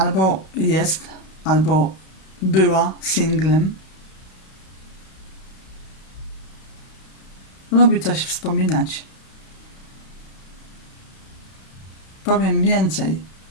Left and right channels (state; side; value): late; right; 32 ms